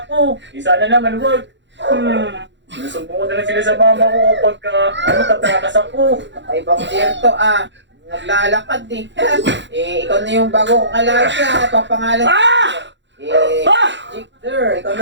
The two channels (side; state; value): left; late; 0.53 ms